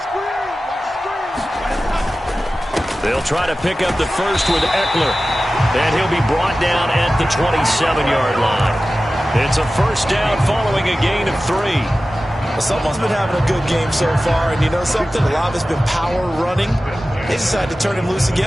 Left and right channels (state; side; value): normal; both; correlation 0.95